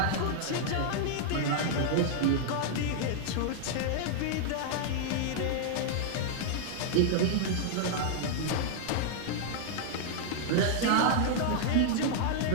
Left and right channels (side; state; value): both; different; correlation -0.01